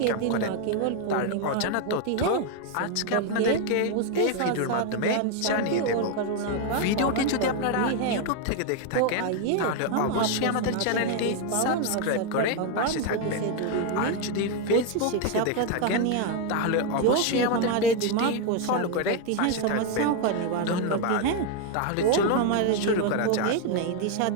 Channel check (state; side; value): different; both; correlation 0.01